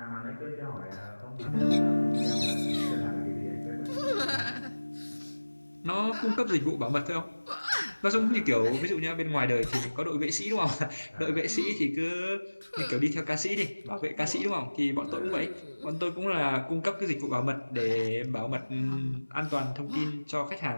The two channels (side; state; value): both; inverted; correlation -1.00